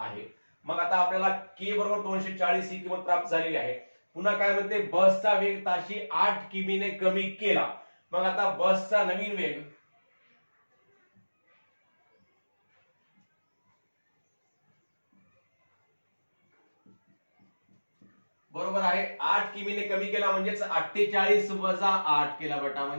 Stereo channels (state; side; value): inverted; both; correlation -1.00